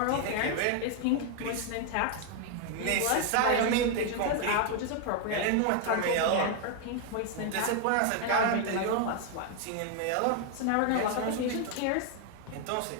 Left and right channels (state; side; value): different; both; correlation 0.00